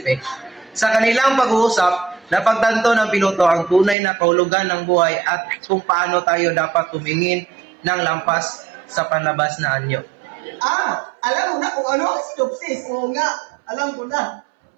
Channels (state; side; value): drops out; left; at 4.0 s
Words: Sa kanilang pag-uusap, napagtanto ng piloto ang tunay na kahulugan ng buhay at kung paano tayo dapat tumingin ng lampas sa panlabas na anyo. Alam mo na kung ano ang synopsis. Oo nga, alam ko na.